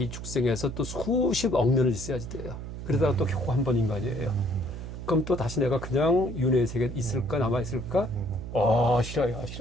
축생에서 또 수십억 년을 있어야지 돼요. 그러다가 또 겨우 한 번 인간이에요. 그럼 또 다시 내가 그냥 윤회의 세계에 있을까, 남아있을까? 싫어요.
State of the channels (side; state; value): right; noise; hum, 9 dB below the sound